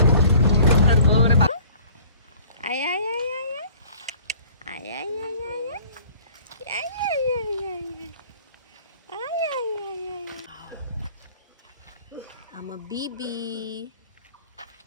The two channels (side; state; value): both; inverted; correlation -0.51